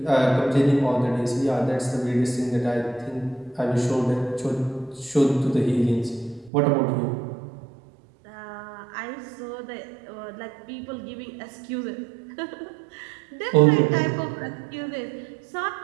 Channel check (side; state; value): left; drops out; at 6.5 s